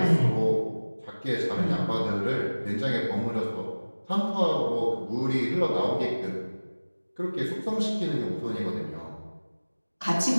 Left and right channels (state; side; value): inverted; both; correlation -1.00